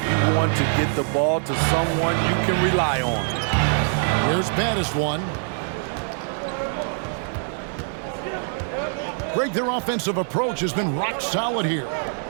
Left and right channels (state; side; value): silent; left; 63 dB below the other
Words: want to get the ball to someone you can rely on. Here's baddest one. Greg, their offensive approach has been rock solid here.